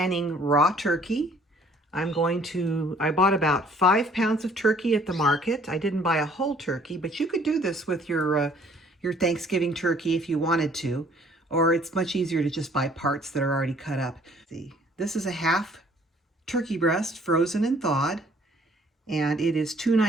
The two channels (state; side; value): normal; both; correlation 0.58